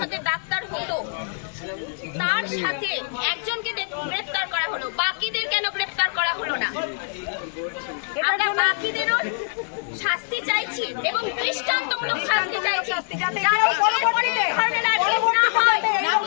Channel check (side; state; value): right; silent; 63 dB below the other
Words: ডাক্তার হতো তার সাথে একজনকে গ্রেফতার করা হলো, বাকিদের কেন গ্রেফতার করা হলো না? আমরা বাকিদেরও শাস্তি চাইছি এবং দৃষ্টান্তমূলক শাস্তি চাইছি, যাতে এরপরে ধরনের আর কেস না হয়,